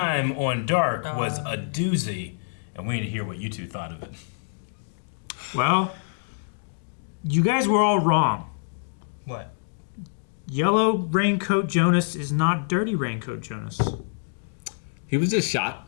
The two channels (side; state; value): right; silent; digital silence